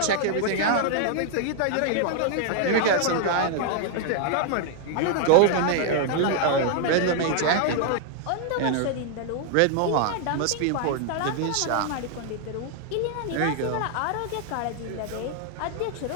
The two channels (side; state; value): both; different; correlation 0.00